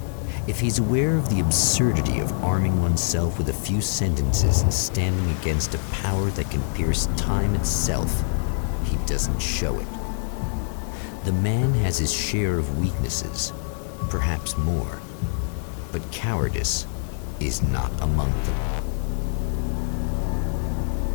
If he's aware of the absurdity of arming oneself with a few sentences and standing against a power that can pierce time itself, he doesn't show it. The man has his share of weaknesses, perhaps more, but cowardice is not among them.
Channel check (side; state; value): right; silent; digital silence